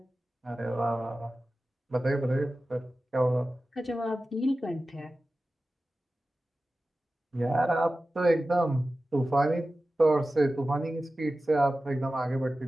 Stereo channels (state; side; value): normal; both; correlation 0.95